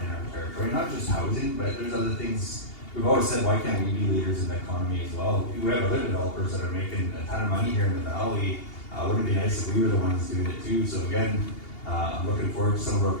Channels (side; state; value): right; late; 2.8 ms